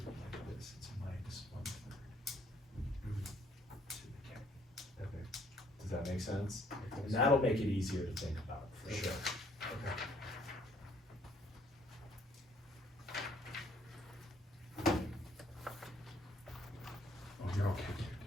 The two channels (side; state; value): both; normal; correlation 0.64